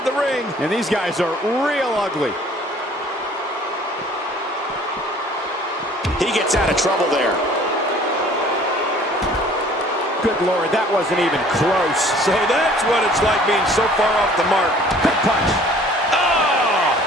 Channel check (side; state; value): both; normal; correlation 0.53